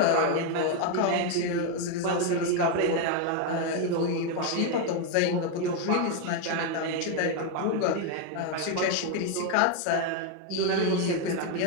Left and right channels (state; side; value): different; both; correlation 0.01